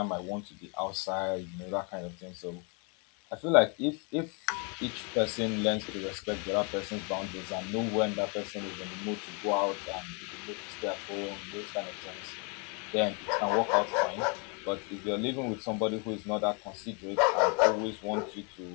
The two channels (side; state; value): right; quieter; 34.9 dB